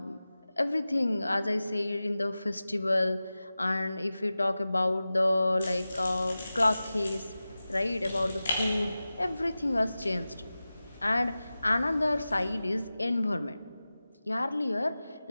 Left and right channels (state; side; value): inverted; both; correlation -0.96